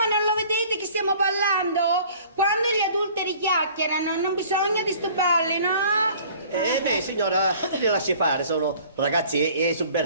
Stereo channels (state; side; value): inverted; both; correlation -0.51